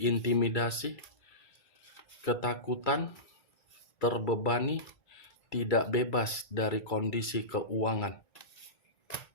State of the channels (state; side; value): late; right; 2.3 ms